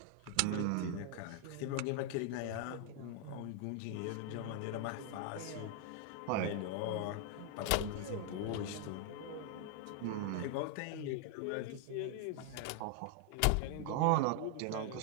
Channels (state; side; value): different; both; correlation 0.00